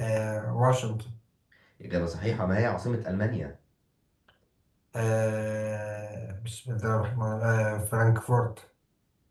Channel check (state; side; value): identical; both; correlation 1.00